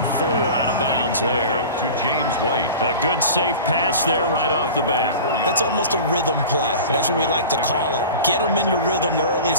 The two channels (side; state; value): both; inverted; correlation -0.36